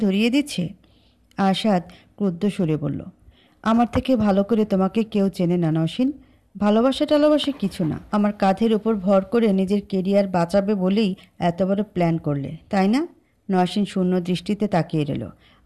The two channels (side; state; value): both; identical; correlation 1.00